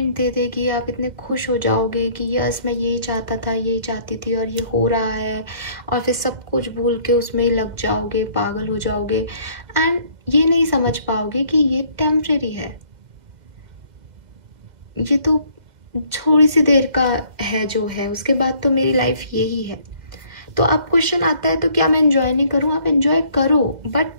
दे देगी, आप इतने खुश हो जाओगे कि यस मैं यही चाहता था, यही चाहती थी और ये हो रहा है, और फिर सब कुछ भूल के उसमें ही लग जाओगे, पागल हो जाओगे, एंड ये नहीं समझ पाओगे कि ये टेम्परेरी है, ये तो थोड़ी सी देर का है जो है, उसके बाद तो मेरी लाइफ यही है। तो अब क्वेश्चन आता है तो क्या मैं एंजॉय नहीं करूं? आप एंजॉय करो,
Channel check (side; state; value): left; late; 1.9 ms